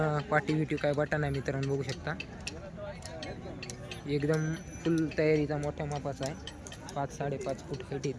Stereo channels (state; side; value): identical; both; correlation 1.00